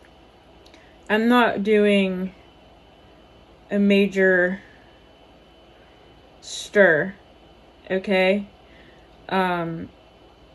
I'm not doing a major stir, okay?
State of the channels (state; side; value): identical; both; correlation 1.00